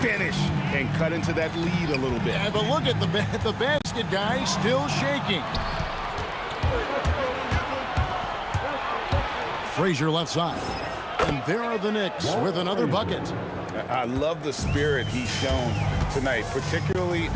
and cut into that lead a little bit. Yeah, but look at the basket, guy, still shaking. Frazier left side. And there are the Knicks with another bucket. I love the spirit he's shown tonight, particularly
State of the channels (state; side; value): identical; both; correlation 1.00